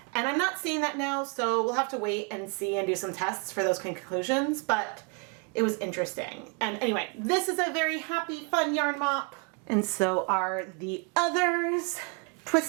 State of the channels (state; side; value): quieter; left; 35.2 dB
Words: And I'm not seeing that now, so we'll have to wait and see and do some tests for those conclusions, but it was interesting. And anyway, this is a very happy, fun yarn mop. And so are the others.